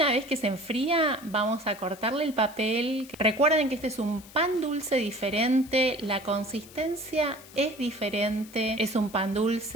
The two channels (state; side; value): noise; left; hiss, 20 dB below the sound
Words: vez que se enfría vamos a cortarle el papel. Recuerden que este es un pan dulce diferente, la consistencia es diferente, es un pan